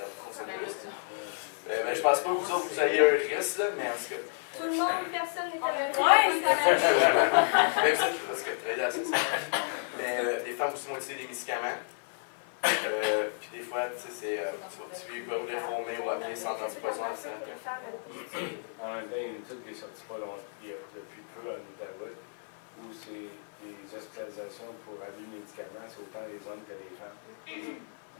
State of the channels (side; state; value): right; silent; 57 dB below the other